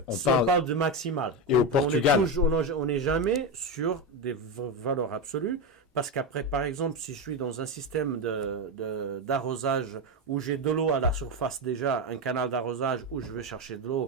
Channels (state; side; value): normal; both; correlation 0.12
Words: Enfin, on parle de maximal. Et au Portugal. On n'est jamais sur des valeurs absolues. Parce qu'après, par exemple, si je suis dans un système d'arrosage où j'ai de l'eau à la surface déjà, un canal d'arrosage où je vais chercher de